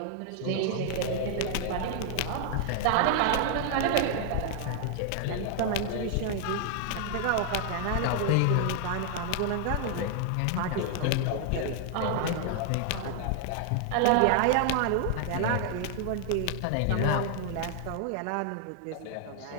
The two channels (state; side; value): different; both; correlation 0.00